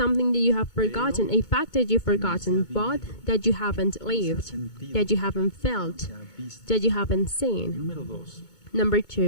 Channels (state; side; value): late; right; 2.2 ms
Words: that you have forgotten, a fact that you've forgotten, but that you haven't lived, that you haven't felt, that you haven't seen. Number